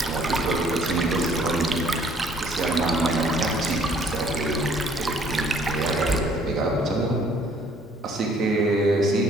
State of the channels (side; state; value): both; normal; correlation 0.60